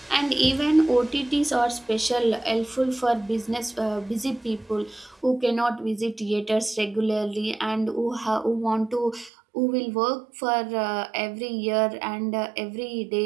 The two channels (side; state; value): left; drops out; at 9.3 s